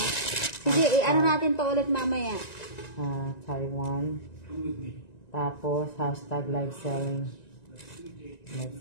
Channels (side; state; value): right; late; 1.9 ms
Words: Sige, ano natin to ulit mamaya. Taiwan. Tapos, hashtag live selling. Live